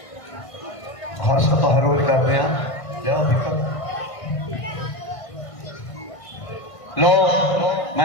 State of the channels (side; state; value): right; late; 1.5 ms